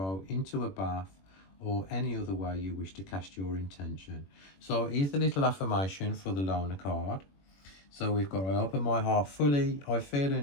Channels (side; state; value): right; late; 21 ms